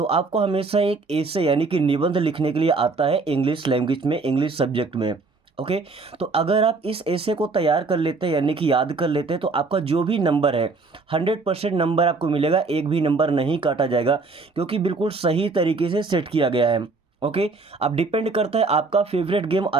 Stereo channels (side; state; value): left; quieter; 3.9 dB